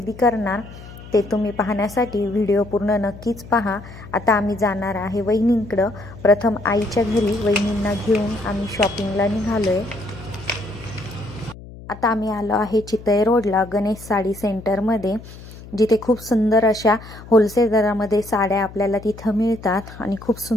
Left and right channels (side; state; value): left; noise; hum, 16 dB below the sound